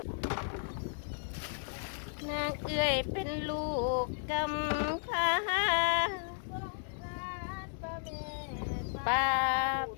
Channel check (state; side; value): silent; right; digital silence